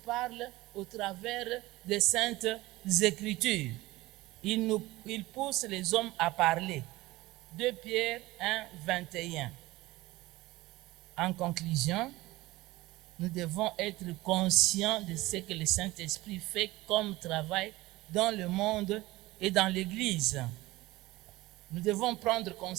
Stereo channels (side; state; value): left; quieter; 19.1 dB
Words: au travers des Saintes Écritures. Il pousse les hommes à parler. 2 Pierre 1, 21. En conclusion, nous devons être conscients de ce que le Saint-Esprit fait comme travail dans le monde et dans l'Église. Nous devons prendre